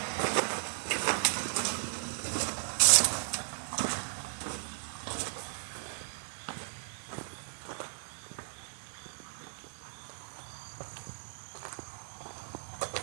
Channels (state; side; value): silent; left; 54 dB below the other